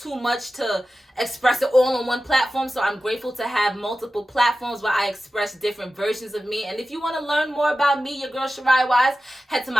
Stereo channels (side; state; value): both; normal; correlation 0.94